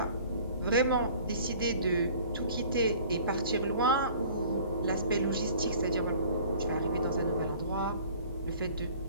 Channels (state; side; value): inverted; both; correlation -0.48